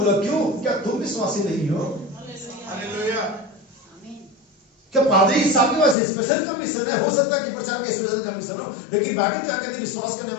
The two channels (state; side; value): drops out; right; at 6.0 s